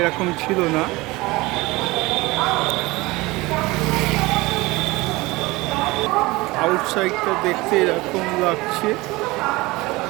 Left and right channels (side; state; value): left; quieter; 21.7 dB